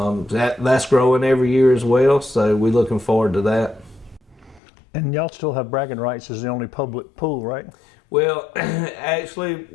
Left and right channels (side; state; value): right; drops out; at 4.6 s